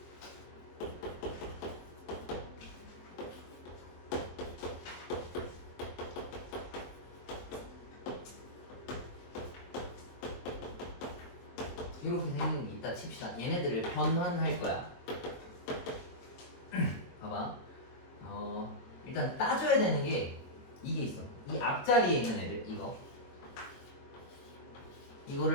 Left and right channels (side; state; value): right; late; 23 ms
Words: 이렇게 생긴 게 있다 칩시다. 얘네들을 변환할 거야. 봐봐. 일단 따져야 되는 게 이게 있어. 이 앞자리에 있는 애들